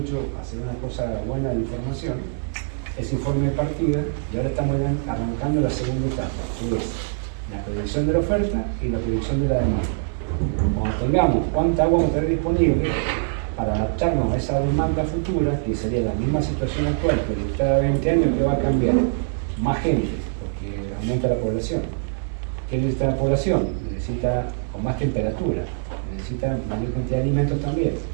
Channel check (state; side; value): silent; left; digital silence